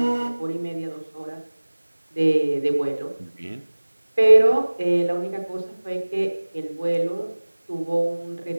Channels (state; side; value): inverted; both; correlation -1.00